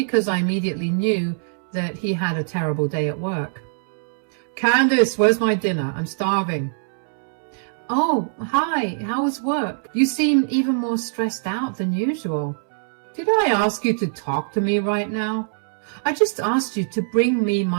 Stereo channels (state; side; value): silent; left; 64 dB below the other